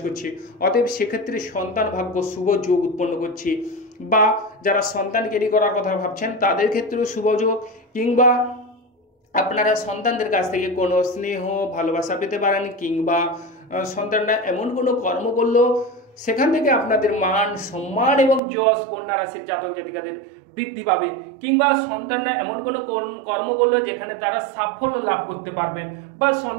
করছে। অতএব সেক্ষেত্রে সন্তান ভাগ্য শুভ যোগ উৎপন্ন করছে। বা যারা সন্তান ক্যারি করার কথা ভাবছেন, তাদের ক্ষেত্রেও শুভ যোগ, কিংবা আপনারা সন্তানদের কাছ থেকে কোনো স্নেহ ভালোবাসা পেতে পারেন, কিংবা সন্তানরা এমন কোনো কর্ম করলো সেখান থেকে আপনাদের মান সম্মান এবং যশ কন্যা রাশির জাতক জাতিকাদের বৃদ্ধি পাবে, কিংবা সন্তানরা এমন কোনো কর্ম করলো যেখানে তারা সাফল্য লাভ করতে পারবেন। বা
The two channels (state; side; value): drops out; left; at 18.4 s